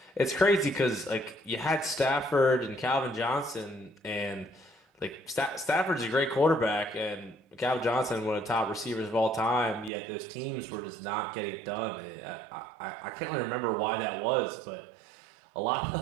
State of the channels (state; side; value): drops out; left; at 9.9 s